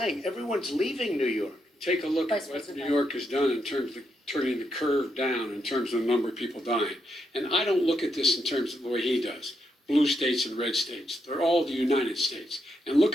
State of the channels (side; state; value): both; normal; correlation 0.81